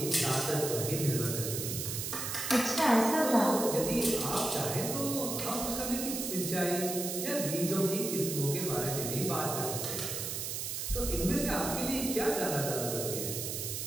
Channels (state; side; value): noise; right; hiss, 4 dB below the sound